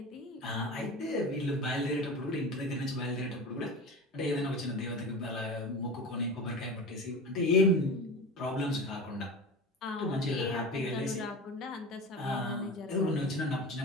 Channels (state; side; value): normal; both; correlation 0.30